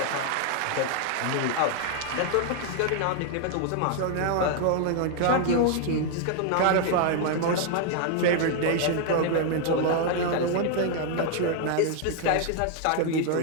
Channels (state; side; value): different; both; correlation 0.00